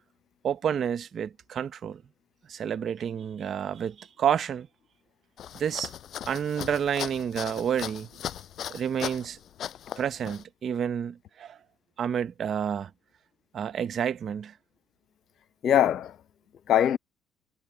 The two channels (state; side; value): normal; both; correlation 0.61